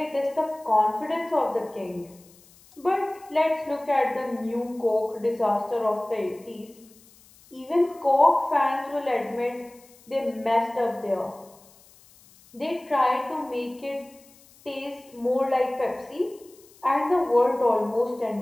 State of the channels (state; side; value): noise; left; hiss, 27 dB below the sound